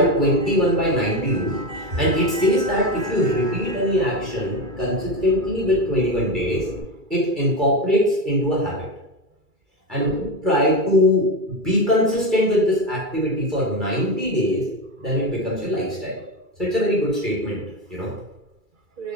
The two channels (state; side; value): late; left; 2.3 ms